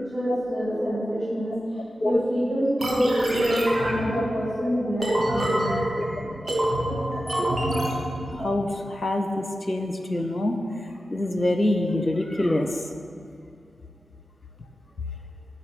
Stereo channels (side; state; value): both; normal; correlation 0.92